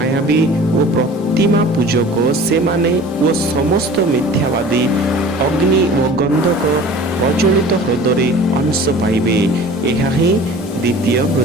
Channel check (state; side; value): normal; both; correlation 0.43